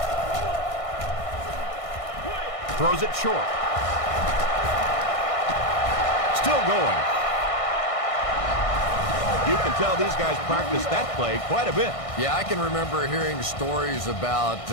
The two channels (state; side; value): late; right; 1.6 ms